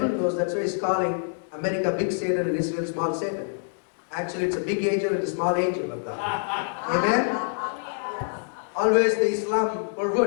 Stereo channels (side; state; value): right; silent; digital silence